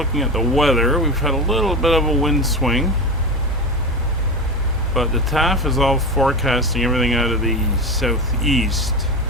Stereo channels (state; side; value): normal; both; correlation 0.22